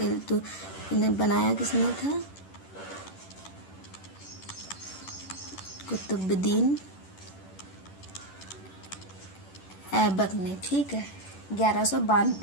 बनाया किसने था? कुतुबुद्दीन ऐबक ने। ठीक है,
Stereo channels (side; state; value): right; late; 11 ms